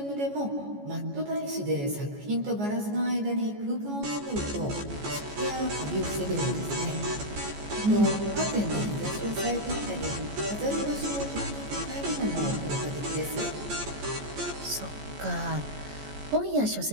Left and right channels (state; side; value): late; left; 14 ms